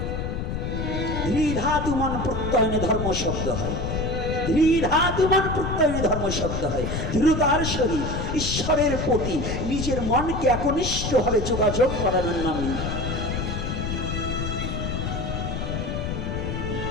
ধৃধাতু মন প্রত্যয়নে ধর্ম শব্দ হয়, ধৃধাতু মন প্রত্যয়নে ধর্ম শব্দ হয়। দৃঢ়তার সহিত ঈশ্বরের প্রতি নিজের মনকে একনিষ্ঠভাবে যোগাযোগ করানোর নামই।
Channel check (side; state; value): left; noise; rumble, 3 dB below the sound